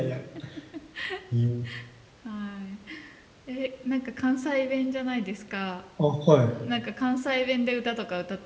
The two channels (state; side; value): identical; both; correlation 1.00